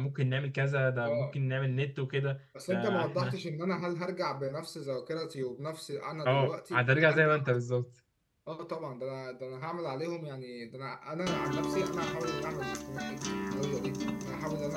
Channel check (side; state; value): both; identical; correlation 1.00